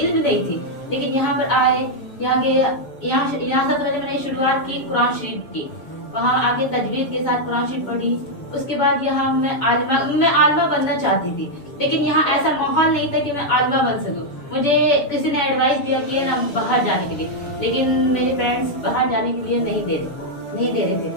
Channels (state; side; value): late; right; 7.0 ms